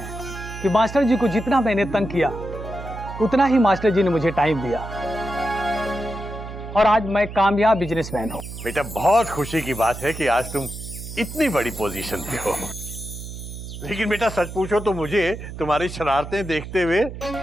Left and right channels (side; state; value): right; noise; hum, 10 dB below the sound